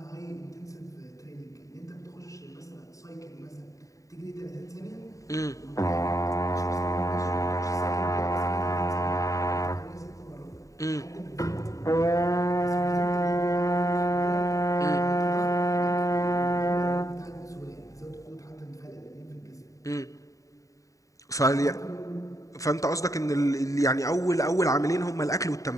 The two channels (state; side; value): late; right; 0.16 ms